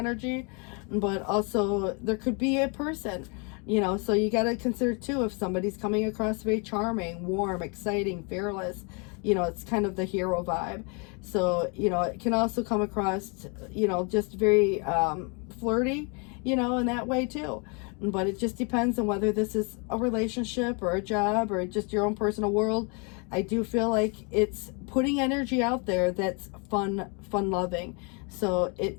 but also there could be a person, so you got to consider too, if somebody's coming across very charming, warm, exciting, fearless, it's kind of the hero vibe. So, it can also come across, just very flirty, in that way too. But it just depends on whether this is a relationship or a job or just your own personal world. I do feel like it's putting energy out there that's fun loving. So it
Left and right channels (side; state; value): right; quieter; 34.0 dB